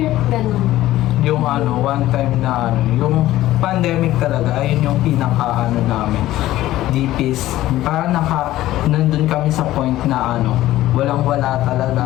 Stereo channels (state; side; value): quieter; right; 15.0 dB